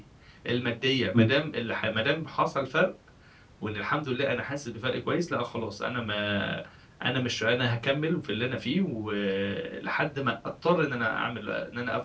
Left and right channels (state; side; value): identical; both; correlation 1.00